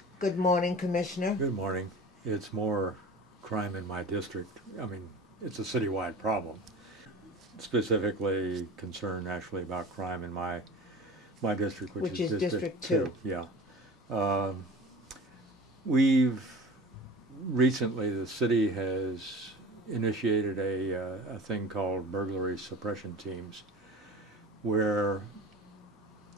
good morning, Commissioner. Good morning. It's more crime in my district. I mean, it's a citywide problem. Specifically concerned actually about crime in my district, which is District 2. Yeah. We've recently, the city has initiated a thing called burglary suppression teams, where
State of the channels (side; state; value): both; normal; correlation 0.38